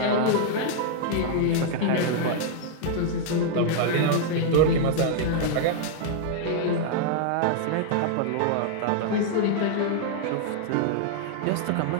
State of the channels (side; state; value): both; different; correlation -0.01